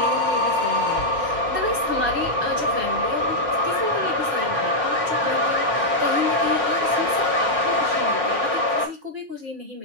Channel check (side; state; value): left; late; 5.0 ms